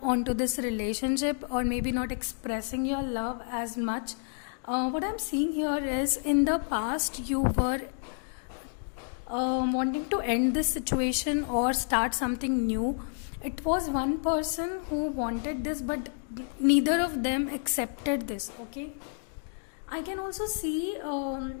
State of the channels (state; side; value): silent; right; digital silence